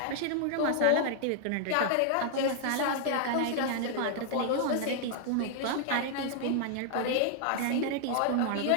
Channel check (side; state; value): both; different; correlation -0.01